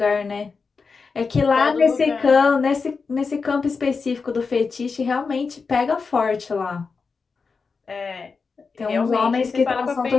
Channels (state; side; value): quieter; right; 4.9 dB